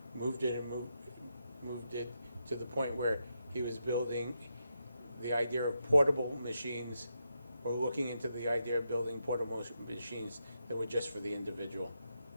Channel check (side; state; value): both; inverted; correlation -0.84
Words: moved it to the point where he was building the idea of portable machines, or looking into the idea of building portable machines that were just for the individual.